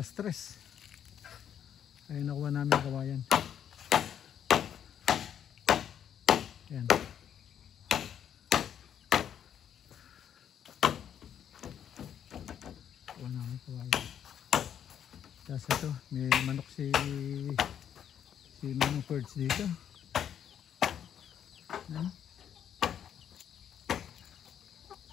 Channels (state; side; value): quieter; right; 9.2 dB